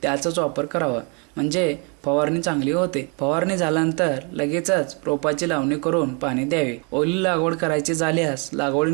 त्याचाच वापर करावा, म्हणजे फवारणी चांगली होते. फवारणी झाल्यानंतर लगेचच रोपाची लावणी करून पाणी द्यावे. ओली लागवड करायची झाल्यास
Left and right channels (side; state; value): left; quieter; 35.1 dB